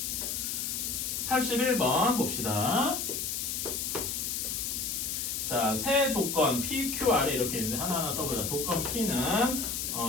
81번 봅시다. 자, 세 조건 P, Q, R에 이렇게 있는데 하나하나 써보자. 조건 P는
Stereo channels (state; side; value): noise; left; hiss, 2 dB below the sound